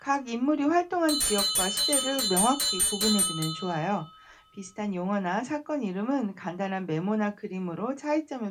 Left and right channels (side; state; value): both; identical; correlation 1.00